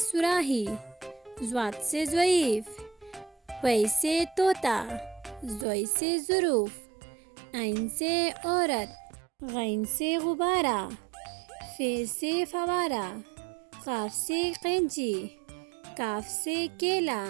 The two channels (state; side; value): drops out; left; at 5.7 s